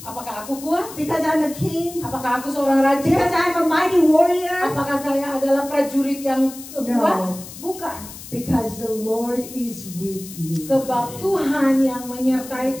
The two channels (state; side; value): noise; left; hiss, 14 dB below the sound